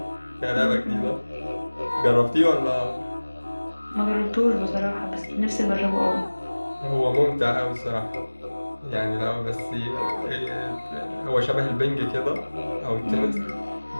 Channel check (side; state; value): both; inverted; correlation -1.00